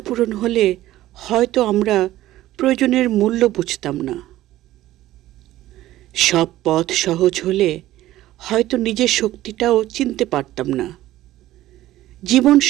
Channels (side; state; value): left; quieter; 15.0 dB